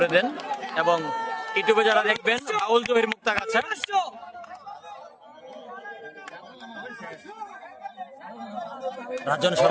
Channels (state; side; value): identical; both; correlation 1.00